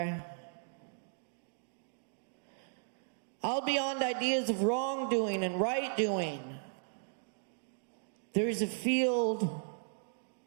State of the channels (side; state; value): left; silent; digital silence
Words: Out beyond ideas of wrongdoing and right doing, there is a field.